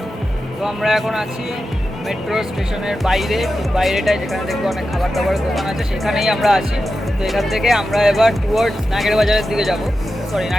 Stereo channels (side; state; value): both; normal; correlation 0.91